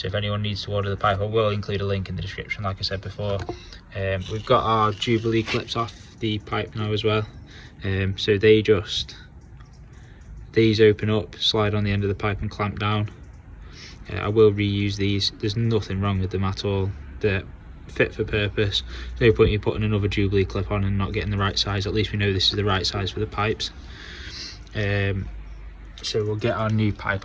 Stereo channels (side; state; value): both; identical; correlation 1.00